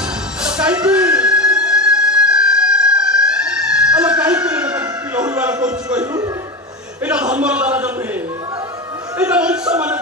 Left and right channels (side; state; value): both; normal; correlation 0.20